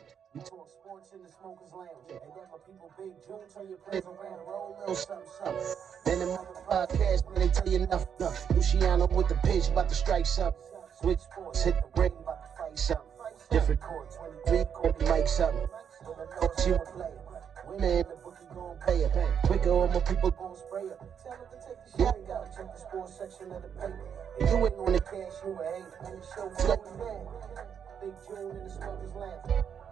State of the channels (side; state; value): left; quieter; 7.8 dB